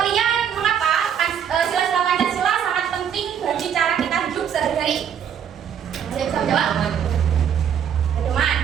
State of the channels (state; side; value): quieter; left; 8.5 dB